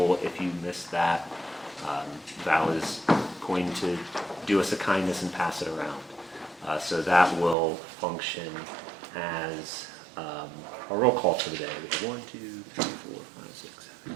If you missed that, Val is going to do us a kindness and pass it around. So that will function as a roll call for the day. We have 1, 2, 3, 4, 5, 6, 7.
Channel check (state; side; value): drops out; left; at 7.6 s